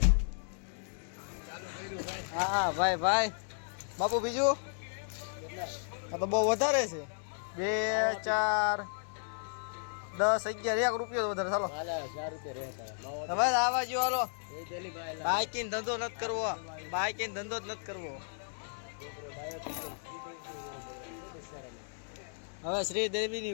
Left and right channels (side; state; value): right; silent; 55 dB below the other